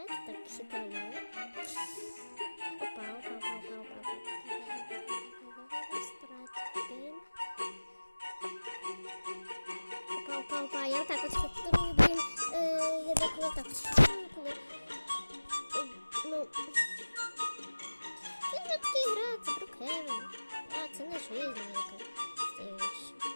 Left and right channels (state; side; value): inverted; both; correlation -1.00